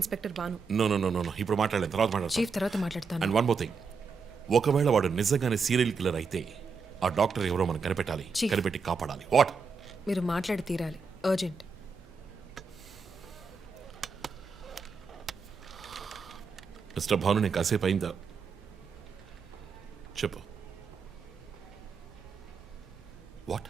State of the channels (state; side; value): quieter; left; 5.0 dB